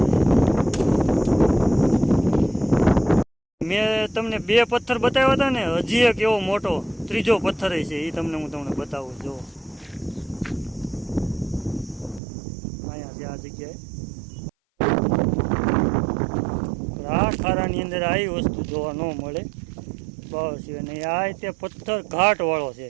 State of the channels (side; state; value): left; drops out; at 12.2 s